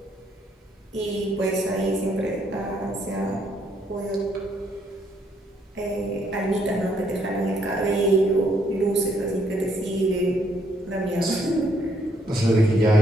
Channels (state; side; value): normal; both; correlation 0.70